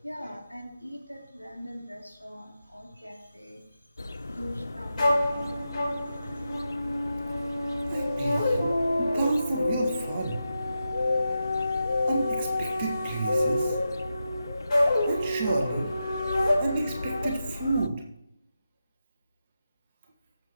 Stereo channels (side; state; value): both; inverted; correlation -0.89